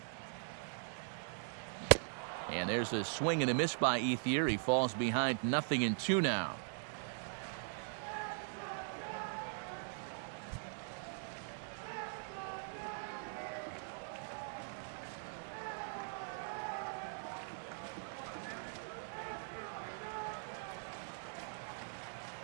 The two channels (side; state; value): left; silent; digital silence